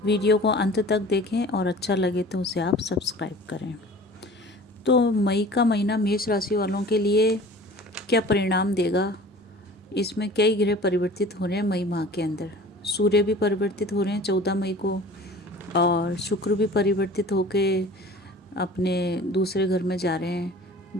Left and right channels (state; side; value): normal; both; correlation 0.43